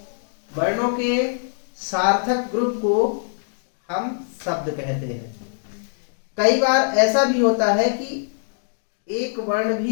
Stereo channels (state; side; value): silent; right; digital silence